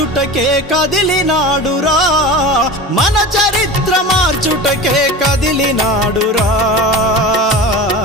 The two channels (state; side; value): normal; both; correlation 0.31